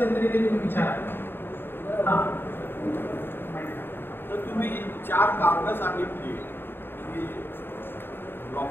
तरी ते तुम्ही विचारा. हां, तर तुम्ही 4 कारणं सांगितली की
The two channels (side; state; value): right; late; 0.10 ms